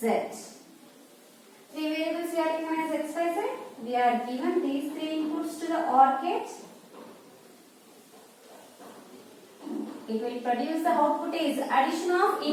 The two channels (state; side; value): identical; both; correlation 1.00